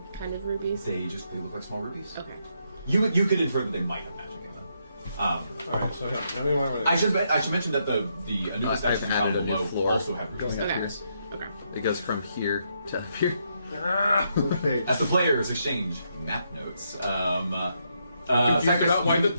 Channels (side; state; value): both; inverted; correlation -0.78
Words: kind of rubies? They look like small rubies. Okay. You could infer that they might have magic in them. Alright, so how do we want to... I should mention that the Anubis I've statues added down a new below floor. also have rubies. Okay. Yes. Okay. It goes from here to up here. Okay. As the players exchange map notes, Confused Cypress, about why the